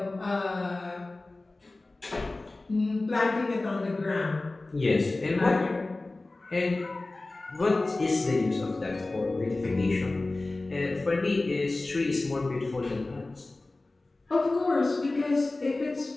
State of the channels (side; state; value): right; quieter; 3.1 dB